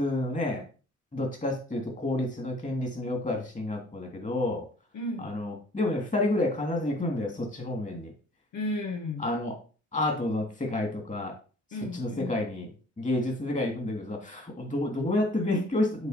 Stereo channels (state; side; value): normal; both; correlation 0.55